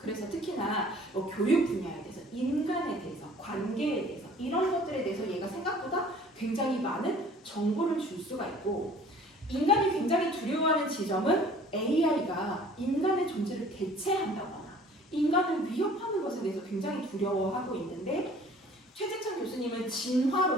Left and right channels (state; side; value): normal; both; correlation 0.51